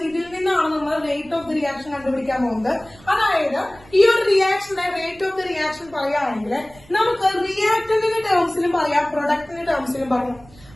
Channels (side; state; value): right; noise; rumble, 24 dB below the sound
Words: ഇതിൽ നിന്നാണ് നമ്മൾ റേറ്റ് ഓഫ് ദി റിയാക്ഷൻ കണ്ടുപിടിക്കാൻ പോകുന്നത്. അതായത് ഈ ഒരു റിയാക്ഷന്റെ റേറ്റ് ഓഫ് ദി റിയാക്ഷൻ പറയുകയാണെങ്കിൽ നമുക്ക് റിയാക്ടന്റിന്റെ ടേംസിലും പറയാം, പ്രൊഡക്റ്റിന്റെ ടേംസിലും പറയാം.